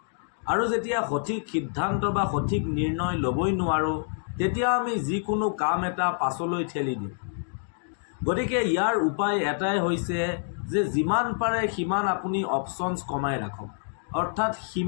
আৰু যেতিয়া সঠিক সিদ্ধান্ত বা সঠিক নিৰ্ণয় ল'বই নোৱাৰোঁ, তেতিয়া আমি যিকোনো কাম এটা পাছলৈ ঠেলি দিওঁ। গতিকে ইয়াৰ উপায় এটাই হৈছে যে যিমান পাৰে সিমান আপুনি অপশ্যনছ কমাই ৰাখক, অৰ্থাৎ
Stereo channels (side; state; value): right; silent; digital silence